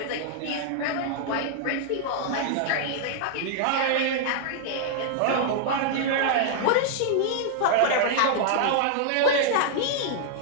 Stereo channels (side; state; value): both; different; correlation -0.01